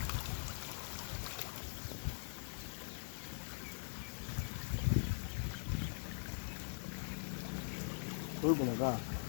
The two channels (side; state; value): right; silent; digital silence